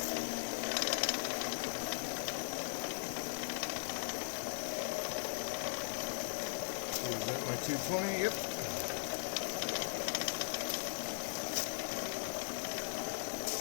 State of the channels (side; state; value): right; silent; digital silence